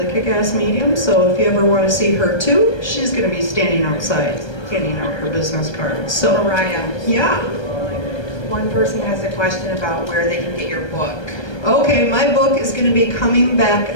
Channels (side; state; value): right; late; 1.3 ms